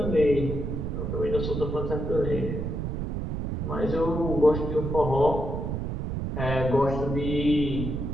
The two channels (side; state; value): right; noise; rumble, 3 dB below the sound